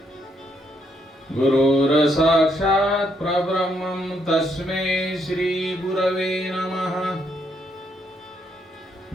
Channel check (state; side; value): normal; both; correlation 0.74